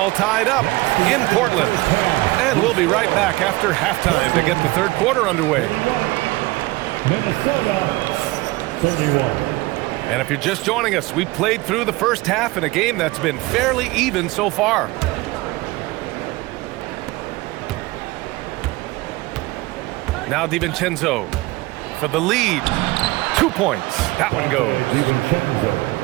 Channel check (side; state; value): left; quieter; 21.1 dB